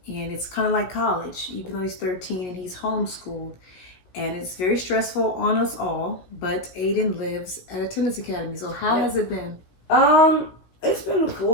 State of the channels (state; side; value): late; right; 17 ms